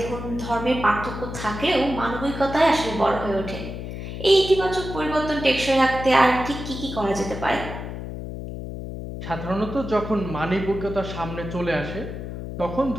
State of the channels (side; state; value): left; noise; hum, 8 dB below the sound